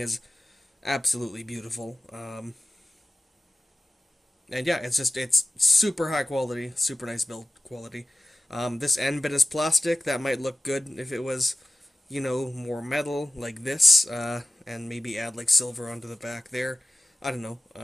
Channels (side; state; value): both; normal; correlation 0.95